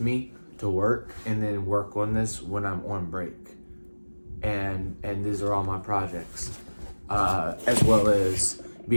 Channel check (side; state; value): both; inverted; correlation -1.00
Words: me to work and then work on this when I'm on break. And these are all my projects, as well as